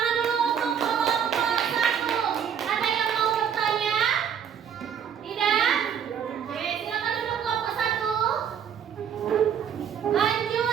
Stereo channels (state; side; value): quieter; left; 8.1 dB